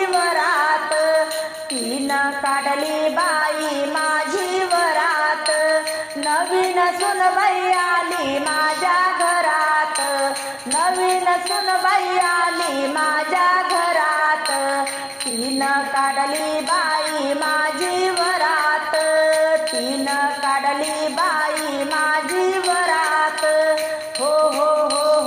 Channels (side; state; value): both; identical; correlation 1.00